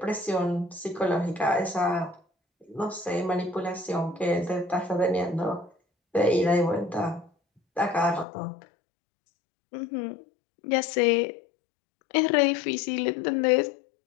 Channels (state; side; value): drops out; right; at 8.2 s